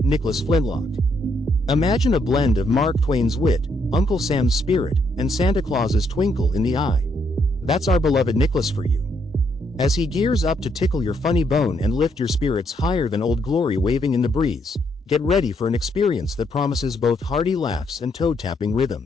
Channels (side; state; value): both; normal; correlation 0.74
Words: Nicholas Flintlock. Imagine a blend of Mark Twain's wit, Uncle Sam's spirit, and Santa Claus's twinkle in the eye. That's our beloved Nicholas for you. As he gears up to tickle your funny bone and lift your spirits higher than Old Glory waving in the breeze, get ready for an experience that promises both hearty laughs and toe-tapping